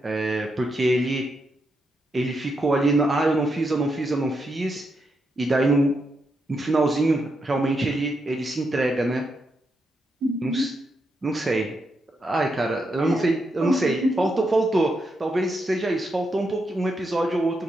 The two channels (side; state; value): both; normal; correlation 0.82